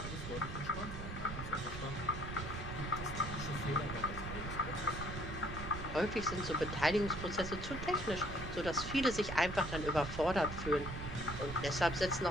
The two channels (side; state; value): right; noise; rumble, 7 dB below the sound